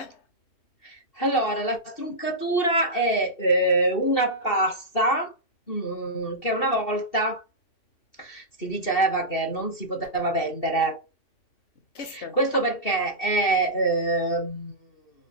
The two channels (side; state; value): right; late; 2.7 ms